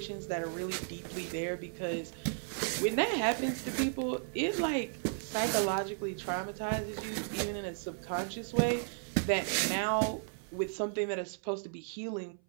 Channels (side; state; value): left; silent; 55 dB below the other